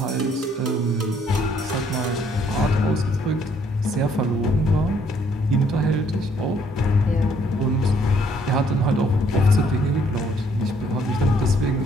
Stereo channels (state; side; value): normal; both; correlation 0.65